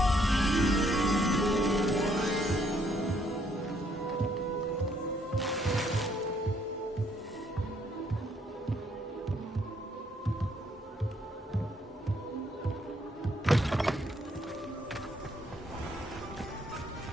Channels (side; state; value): both; normal; correlation 0.69